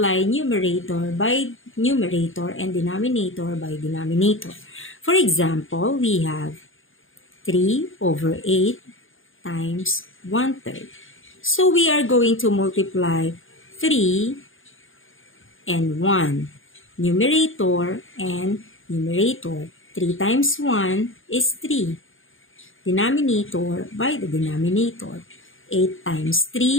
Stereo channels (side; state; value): right; late; 0.58 ms